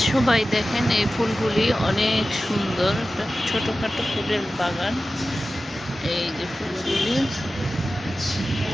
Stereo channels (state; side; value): normal; both; correlation 0.95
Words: সবাই দেখেন এই ফুলগুলি অনেক সুন্দর। একটা ছোটখাটো ফুলের বাগান। এই যে ফুলগুলি